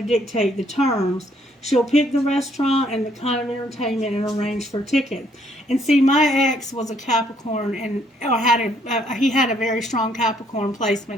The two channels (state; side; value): normal; both; correlation 0.68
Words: dictate the terms. She'll pick the restaurant and the kind of entertainment and arrange for tickets. And see, my ex was a Capricorn, and he had a very strong Capricorn